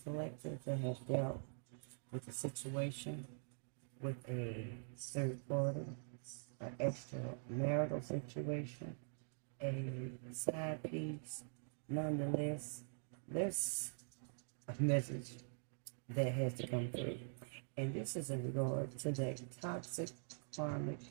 collective, that have dealt with a situation with a third party, an extramarital situation, a side piece. Nonetheless, there's a message that has to come through. And this is in regard to that toxic karmic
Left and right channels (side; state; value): left; silent; digital silence